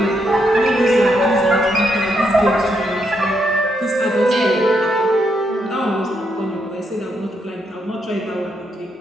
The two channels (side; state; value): both; normal; correlation 0.78